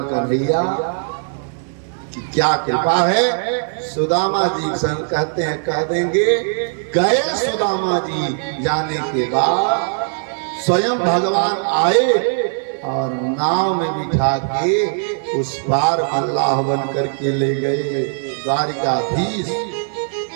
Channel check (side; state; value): left; silent; 57 dB below the other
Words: कन्हैया की क्या कृपा है। सुदामा जी कहते हैं, कह देंगे, गए सुदामा जी जाने के बाद स्वयं भगवान आए और नाव में बिठा के उस पार अल्लाह बन करके ले गए। द्वारिकाधीश